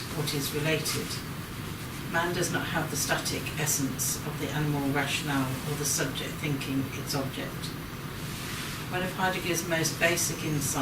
what is related. Man does not have the static essence of the animal rationale or the subject thinking its object. One of Heidegger's most basic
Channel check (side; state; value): both; identical; correlation 1.00